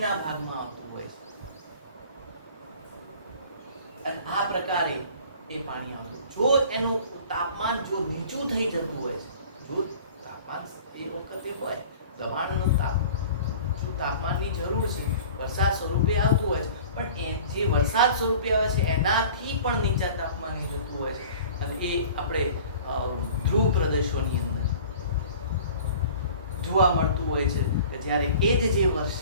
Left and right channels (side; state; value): both; inverted; correlation -0.45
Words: ભાગમાં આવતું હોય છે. અને આ પ્રકારે એ પાણી આવતું. જો એનું તાપમાન જો નીચું થઈ જતું હોય છે, જો તાપમાન એ વખતે હોય દબાણનું તાપમાનની જરૂર છે, વરસાદ સ્વરૂપે આવતું હોય છે, પણ એ જે વરસાદ સ્વરૂપે આવે છે એનાથી પણ નીચા તાપમાને જતું હોય છે. અને એ આપણે ધ્રુવ પ્રદેશોની અંદર જોવા મળતું હોય છે કે જ્યારે એ જે